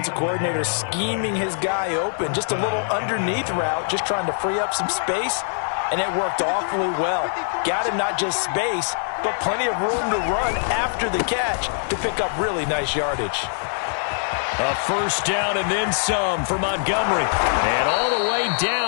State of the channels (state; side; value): silent; right; digital silence